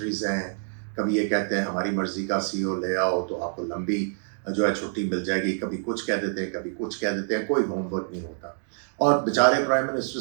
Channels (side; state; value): left; silent; digital silence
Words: हैं, कभी ये कहते हैं हमारी मर्ज़ी का सीईओ ले आओ तो आपको लंबी जो है छुट्टी मिल जाएगी, कभी कुछ कह देते हैं, कभी कुछ कह देते हैं, कोई होमवर्क नहीं होता। और बेचारे प्राइम मिनिस्टर